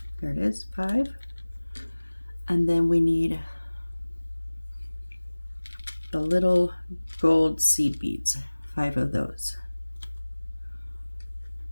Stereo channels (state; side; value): inverted; both; correlation -1.00